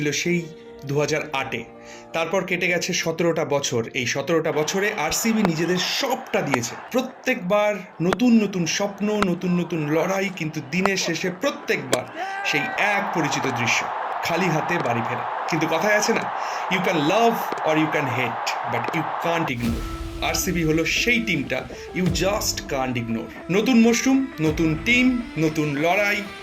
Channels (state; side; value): identical; both; correlation 1.00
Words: সেই 2008-এ। তারপর কেটে গেছে 17টা বছর। এই 17টা বছরে আরসিবি নিজেদের সবটা দিয়েছে। প্রত্যেকবার নতুন নতুন স্বপ্ন, নতুন নতুন লড়াই, কিন্তু দিনের শেষে প্রত্যেকবার সেই এক পরিচিত দৃশ্য, খালি হাতে বাড়ি ফেরা। কিন্তু কথায় আছে না, you can love or you can hate, but you can't ignore. RCB হলো সেই টিমটা ইউ জাস্ট কান্ট ইগনোর। নতুন মশরুম, নতুন টিম, নতুন লড়াই,